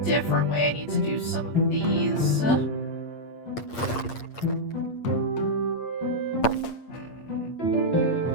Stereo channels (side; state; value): right; late; 8.5 ms